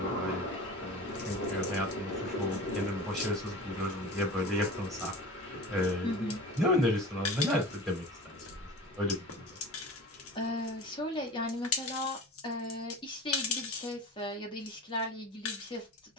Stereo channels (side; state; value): both; normal; correlation 0.35